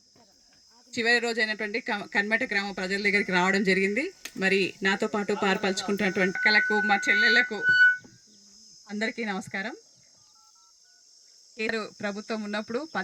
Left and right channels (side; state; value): both; identical; correlation 1.00